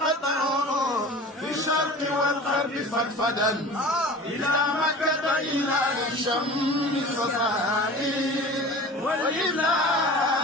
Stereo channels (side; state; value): both; normal; correlation 0.38